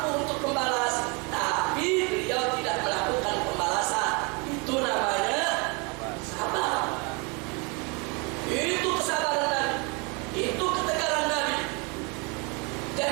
untuk membalas, tapi beliau tidak melakukan pembalasan. Itu namanya sabar. Itu kesabaran Nabi, itu ketegaran Nabi.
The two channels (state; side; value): quieter; left; 31.2 dB